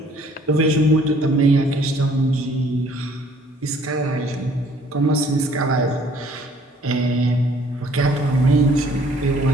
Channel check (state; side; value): normal; both; correlation 0.59